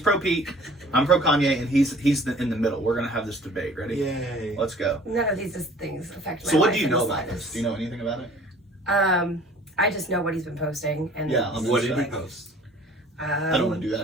Pete. I'm pro Kanye, and he's in the middle. We're gonna have this debate. Ready? Yay. Let's go. None of these things affect my So what life do you in know the about this? slightest. Do you know anything about it? I just know what he's been posting, and What did he post? I don't want to do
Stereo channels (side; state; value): both; normal; correlation 0.51